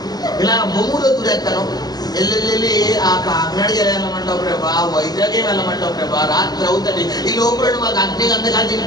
ఇలా బొమ్మూరు దూరెత్తాను. వెళ్ళి ఆ కాకినాడకి వెళ్ళమంటావు ప్రభా, వైజాగ్ వెళ్ళమంటావు ప్రభా, రాత్రి అవుతుంది. ఈ లోపల మాకు అగ్ని గంధకాలు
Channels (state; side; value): late; right; 0.19 ms